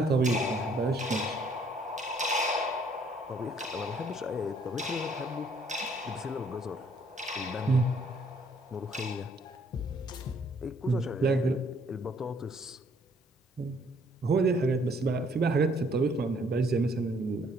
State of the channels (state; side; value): normal; both; correlation 0.64